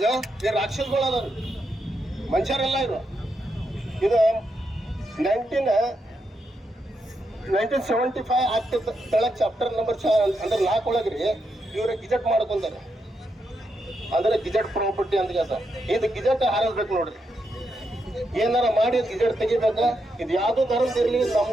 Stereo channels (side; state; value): both; normal; correlation 0.82